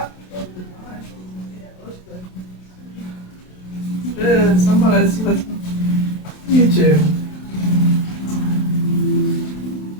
Somebody's with YouTube.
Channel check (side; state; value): right; late; 27 ms